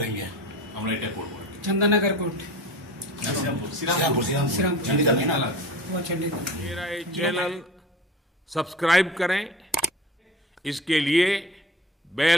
আমরা এটা করবো। चंदनगर कोर्ट, श्रीरामपुर चंडीगढ़ में ना, वो चंडीगढ़। मेरा ये चैनल सब्सक्राइब करें, इसके लिए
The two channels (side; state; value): both; normal; correlation 0.37